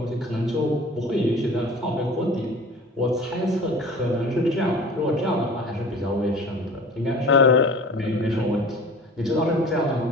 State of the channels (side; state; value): both; normal; correlation 0.41